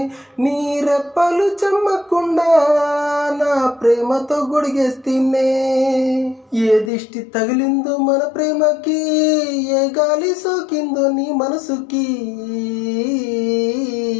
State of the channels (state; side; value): drops out; right; at 6.9 s